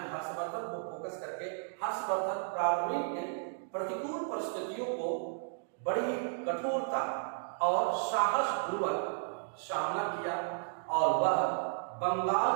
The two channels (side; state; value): left; silent; digital silence